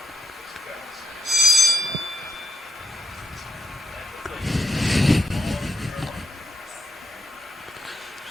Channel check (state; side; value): normal; both; correlation 0.80